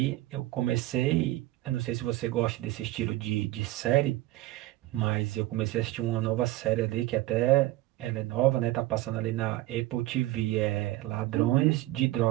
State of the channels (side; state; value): left; quieter; 16.6 dB